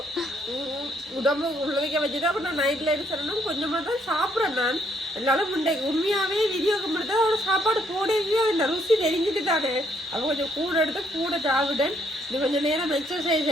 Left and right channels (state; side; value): normal; both; correlation 0.70